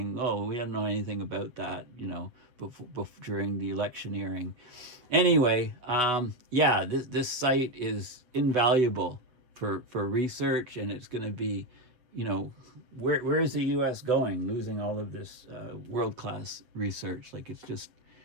Oh, we don't know anything about that, during the electioneering. Anyway, yeah, this site is invaluable for research, and it's going to be, where is the U.S. going, losing all of this world-class research? Like, it's just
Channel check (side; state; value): left; late; 7.8 ms